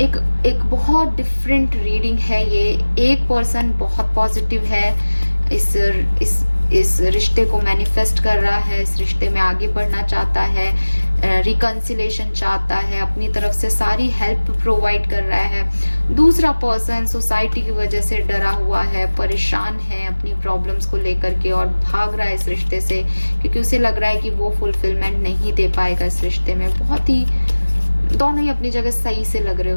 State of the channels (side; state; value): both; inverted; correlation -1.00